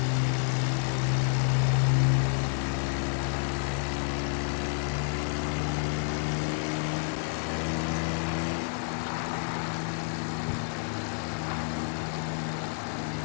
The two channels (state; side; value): silent; right; 58 dB below the other